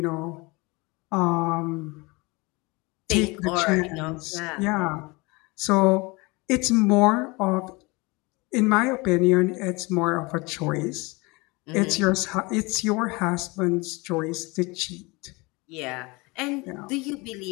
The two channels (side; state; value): right; quieter; 25.5 dB